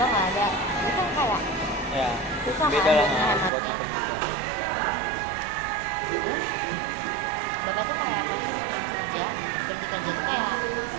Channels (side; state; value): left; drops out; at 3.5 s